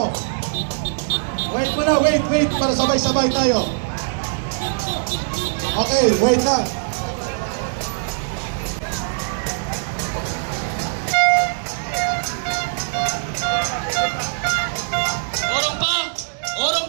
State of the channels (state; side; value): silent; left; digital silence